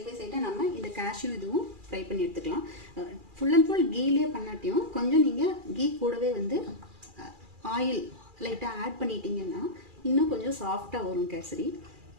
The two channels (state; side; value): late; left; 2.4 ms